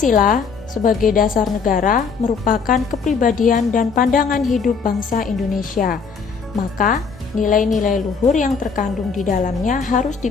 sebagai dasar negara merupakan kepribadian dan pandangan hidup bangsa Indonesia. Maka, nilai-nilai luhur yang terkandung di dalamnya harus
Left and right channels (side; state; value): right; quieter; 5.5 dB